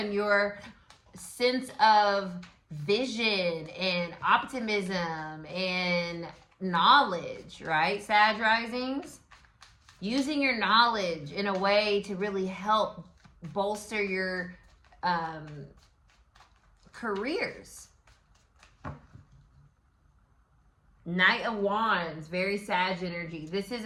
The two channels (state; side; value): identical; both; correlation 1.00